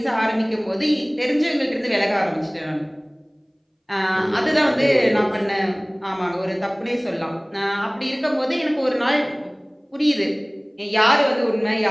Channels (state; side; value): identical; both; correlation 1.00